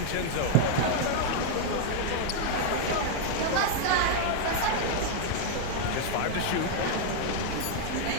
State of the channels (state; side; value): different; both; correlation 0.00